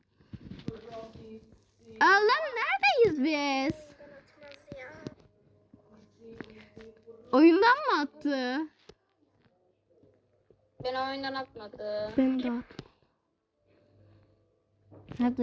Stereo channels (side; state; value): both; identical; correlation 1.00